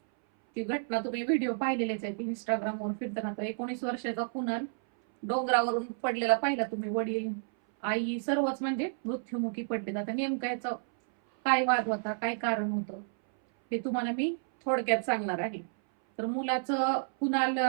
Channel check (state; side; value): silent; left; 57 dB below the other